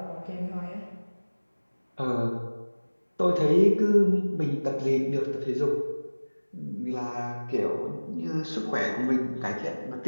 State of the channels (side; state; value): both; inverted; correlation -1.00